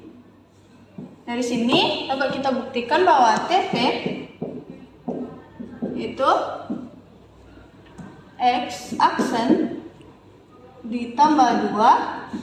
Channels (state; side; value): identical; both; correlation 1.00